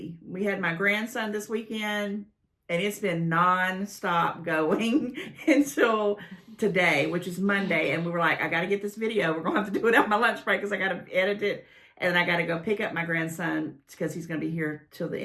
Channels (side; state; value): both; identical; correlation 1.00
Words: We had my grandson this weekend, and it's been non-stop going until today, which is Monday. And we were like, I got to get this video. We're going to have to do it on my lunch break because I got to edit it. And I got to go pick up my grandson because he's going to be here till the